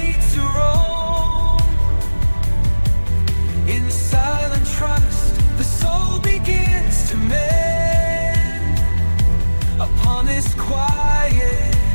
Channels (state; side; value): inverted; both; correlation -1.00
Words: to roam. In silent trust, the soul begins to mend upon this quiet,